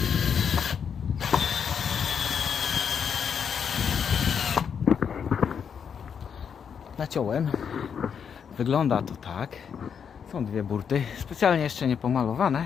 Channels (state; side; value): quieter; right; 7.2 dB